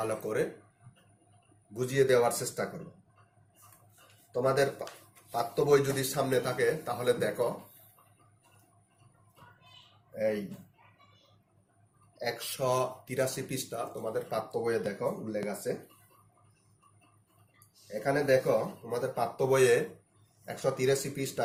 করে বুঝিয়ে দেওয়ার চেষ্টা করব। তোমাদের পাঠ্য বই যদি সামনে থাকে তাহলে দেখো, এই 183 পৃষ্ঠা তোমাদের পাঠ্য বইয়ে দেখো উল্লেখ আছে। এখানে দেখো তোমাদের পাঠ্য বইয়ে 183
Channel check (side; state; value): both; identical; correlation 1.00